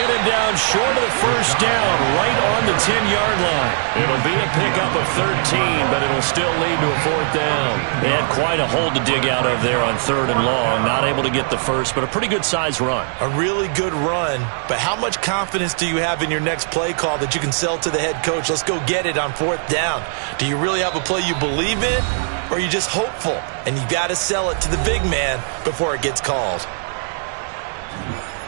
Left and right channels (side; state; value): left; silent; digital silence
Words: him down short of the first down, right on the 10-yard line. It'll be a pickup of 13, but it'll still lead to a 4th down. They had quite a hole to dig out of there on 3rd and long. Not able to get the first, but a pretty good-sized run. A really good run, but how much confidence do you have in your next play call that you can sell to the head coach? Let's go get it on 4th down. Do you really have a play you believe in, or are you just hopeful? And you got to sell it to the big man before it gets called.